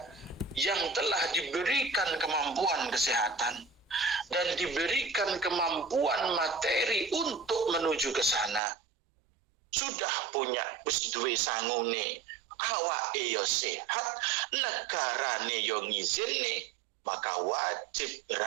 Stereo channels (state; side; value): drops out; left; at 8.6 s